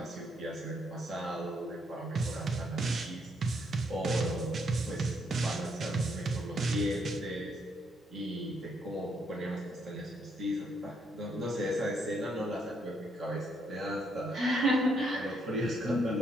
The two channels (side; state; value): both; normal; correlation 0.74